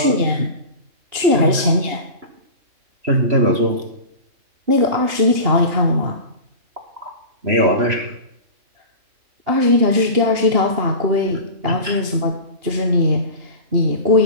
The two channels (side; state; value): left; late; 2.8 ms